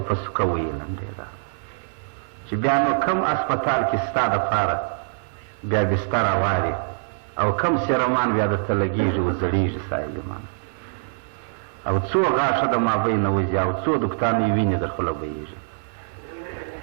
په سوکه ویلنډېده چې بیا نو کم اسپتال کې ستا دپاره بیا بستره واري او کم سیرومان بیا درته لګېږي و زړېږي ستا ایمان او څو غاښه د مابین نه وځي او څو دوکتانې وینې در خوله بهېږي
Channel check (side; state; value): left; silent; digital silence